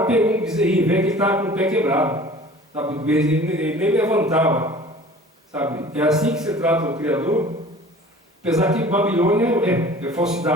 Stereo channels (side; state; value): both; normal; correlation 0.45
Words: pegou um bezerrinho velho que estava com o pé quebrado, sabe? O bezerrinho ele nem levantava, sabe? É assim que você trata o Criador, apesar que Babilônia é